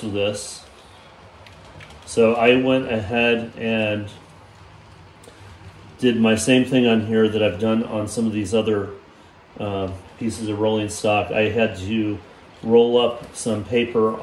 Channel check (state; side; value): identical; both; correlation 1.00